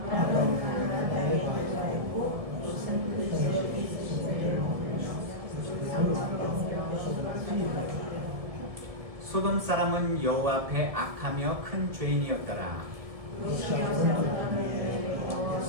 가나안 땅에 거주하였고 롯은 그 지역에 있으시되 소돔 사람은 여호와 앞에 악하며 큰 죄인이었더라. 롯이 아브라함에게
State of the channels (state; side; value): late; left; 1.7 ms